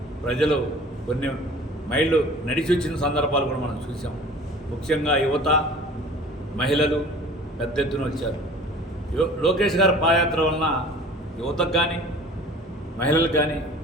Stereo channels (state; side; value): normal; both; correlation 0.45